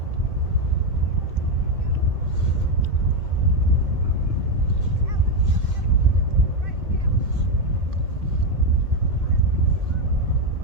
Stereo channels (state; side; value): late; left; 2.1 ms